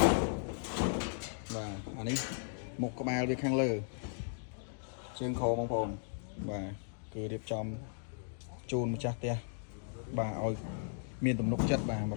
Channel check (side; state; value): right; silent; digital silence